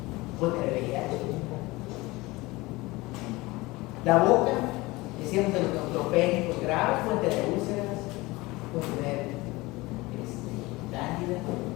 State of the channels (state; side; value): quieter; right; 21.5 dB